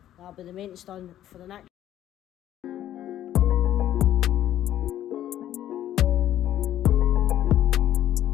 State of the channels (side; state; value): right; quieter; 12.1 dB